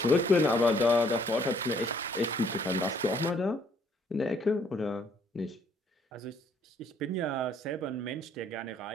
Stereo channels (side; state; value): both; normal; correlation 0.65